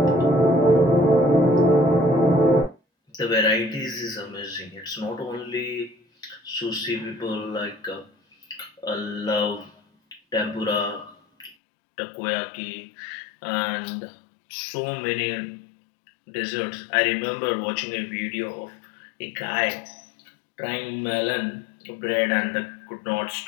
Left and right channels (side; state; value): right; drops out; at 11.6 s